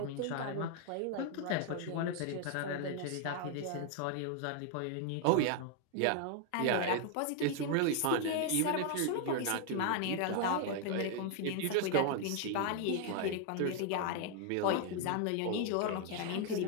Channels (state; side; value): different; both; correlation 0.00